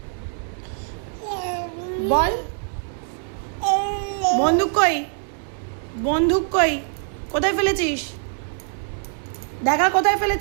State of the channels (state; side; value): silent; left; digital silence